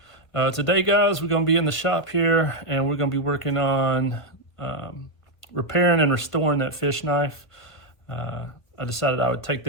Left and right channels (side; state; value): right; late; 1.8 ms